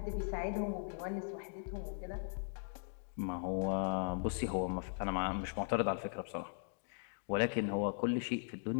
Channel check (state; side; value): silent; right; digital silence